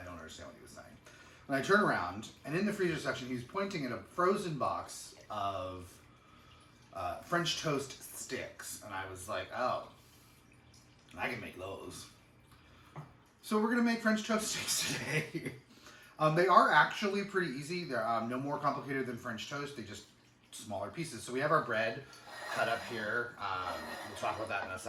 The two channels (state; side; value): identical; both; correlation 1.00